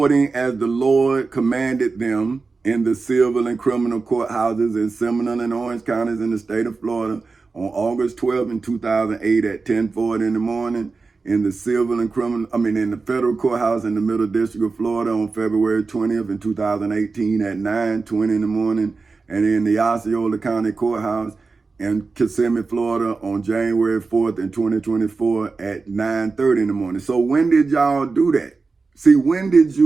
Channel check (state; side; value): quieter; left; 4.2 dB